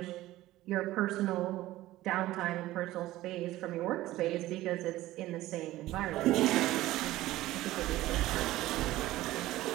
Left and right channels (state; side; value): quieter; left; 16.2 dB